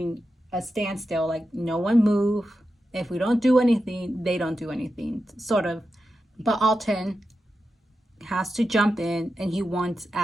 a standstill, like no one move. If we don't do anything, they don't do anything, sort of. But Alton has to jump in and he wants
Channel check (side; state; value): both; normal; correlation 0.90